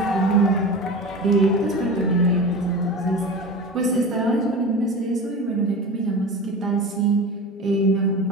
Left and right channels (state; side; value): normal; both; correlation 0.31